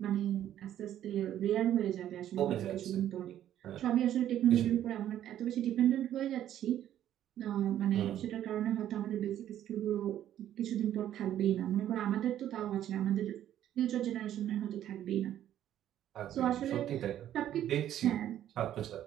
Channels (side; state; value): left; quieter; 11.5 dB